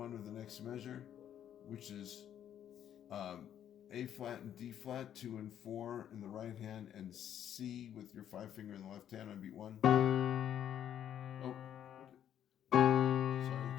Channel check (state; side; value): quieter; right; 10.1 dB